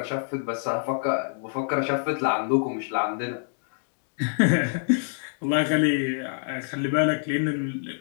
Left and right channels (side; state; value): right; silent; digital silence